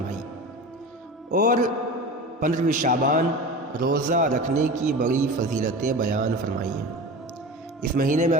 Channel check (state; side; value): normal; both; correlation 0.32